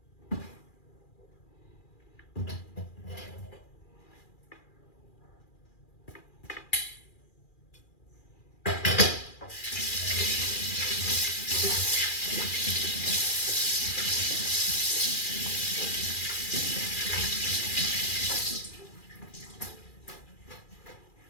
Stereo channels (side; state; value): right; late; 2.4 ms